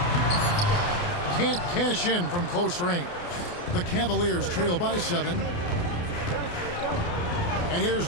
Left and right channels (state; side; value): late; right; 28 ms